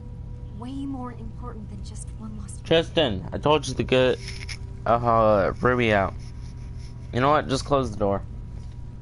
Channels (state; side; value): identical; both; correlation 1.00